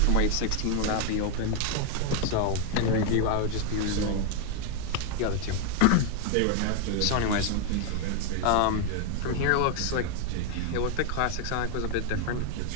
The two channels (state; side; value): different; both; correlation 0.00